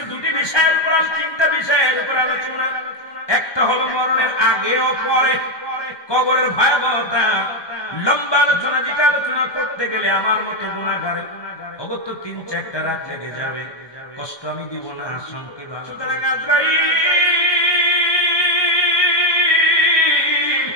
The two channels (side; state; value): right; late; 1.2 ms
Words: দুটি বিষয়ের উপর, তিনটা বিষয়ের উপর আলোচনা, একটা হলো মরণের আগে ও পরে, কবরের ভয়াবহতা, লম্বা আলোচনা, যেটা আলোচনা করতে গেলে আমার মতো গুনাহগার অগত্য ৩-৪টা রাত লেগে যাবে। কষ্ট আমি দিব না, সংক্ষেপ। সুতরাং আজরাইল,